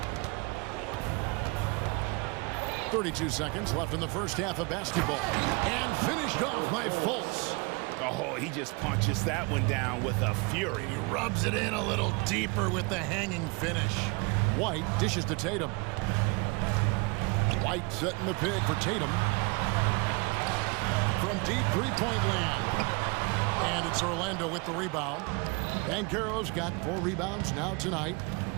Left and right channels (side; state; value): left; quieter; 28.7 dB